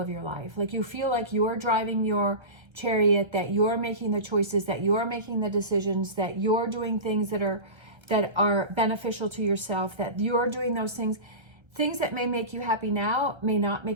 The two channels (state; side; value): late; left; 1.3 ms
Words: your life. Like you feel like you're driving your chariot, that you're making the choices, that you're making the decisions, that you're doing things that are beneficial to yourself, that you're doing those things that may make you happy now may not